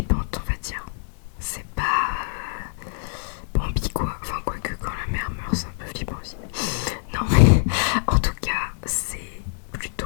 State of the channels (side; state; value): right; silent; digital silence